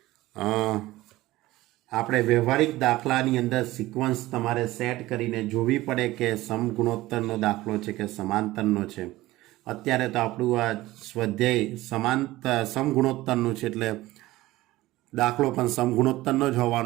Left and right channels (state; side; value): quieter; left; 17.6 dB